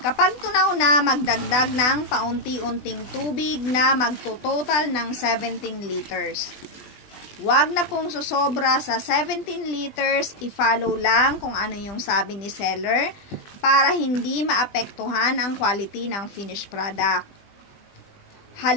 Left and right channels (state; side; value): late; right; 20 ms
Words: Kapag tunaw na, magdagdag ng paunti-unting tubig na magtototal ng 17 liters. Huwag na pong susobra sa 17 liters, i-follow lang kung ano yung sabi ni seller para hindi maapektuhan ang quality ng finished product.